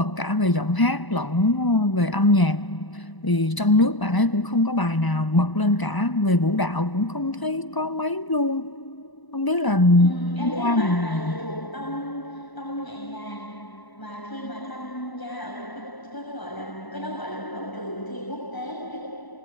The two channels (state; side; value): late; right; 1.0 ms